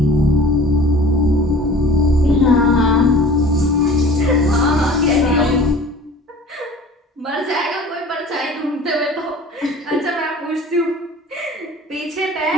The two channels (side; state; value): both; normal; correlation 0.44